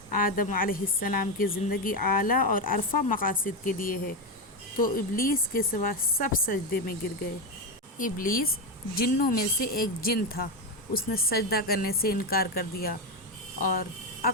آدم علیہ السلام کی زندگی اعلیٰ اور عرفہ مقاصد کے لیے ہے۔ تو ابلیس کے سوا سب سجدے میں گر گئے۔ ابلیس جنوں میں سے ایک جن تھا، اس نے سجدہ کرنے سے انکار کر دیا اور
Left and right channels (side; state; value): both; normal; correlation 0.11